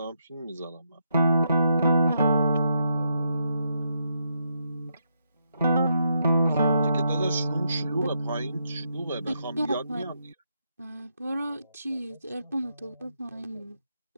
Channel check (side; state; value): both; inverted; correlation -0.80